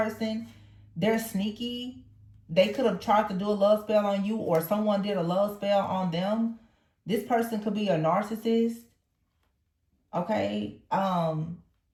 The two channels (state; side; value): identical; both; correlation 1.00